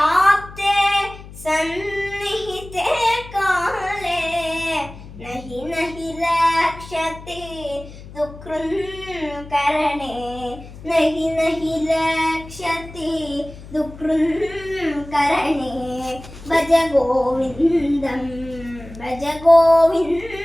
സന്നിഹിതേ കാലേ നഹി നഹി രക്ഷതി ദുഃഖൃൻ കരണേ നഹി നഹി രക്ഷതി ദുഃഖൃൻ കരണേ ഭജ ഗോവിന്ദം ഭജ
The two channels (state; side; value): noise; left; hum, 16 dB below the sound